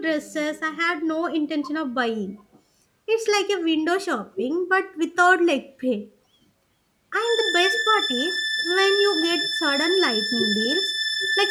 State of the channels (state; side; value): identical; both; correlation 1.00